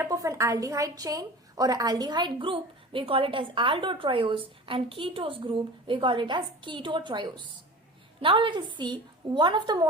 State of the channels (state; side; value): normal; both; correlation 0.37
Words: of an aldehyde chain or an aldehyde group, we call it as aldotriose, and ketose group, we call it as ketotriose. Now let us see one of the